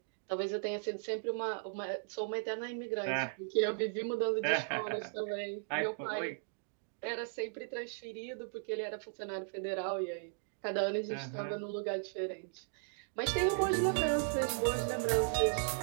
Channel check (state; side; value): silent; left; digital silence